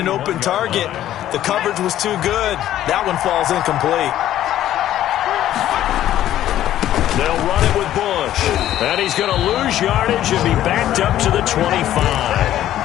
open target, the coverage was too good. That one falls incomplete. They'll run it with Bush. And he's going to lose yardage and be backed up to the 25.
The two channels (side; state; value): right; quieter; 12.5 dB